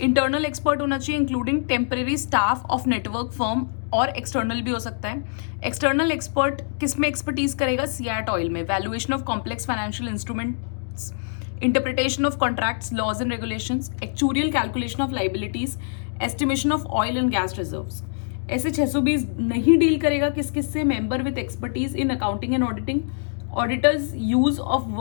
इंटरनल एक्सपर्ट होना चाहिए including temporary staff of network firm और एक्सटर्नल भी हो सकता है. एक्सटर्नल एक्सपर्ट किस में एक्सपर्टीज करेगा, सीएट ऑयल में, valuation of complex financial instruments, interpretation of contracts, laws and regulations, actuarial calculation of liabilities, estimation of oil and gas reserves. ऐसे 620 नहीं डील करेगा किस किस से, member with expertise in accounting and auditing, auditors use of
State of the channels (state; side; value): silent; right; digital silence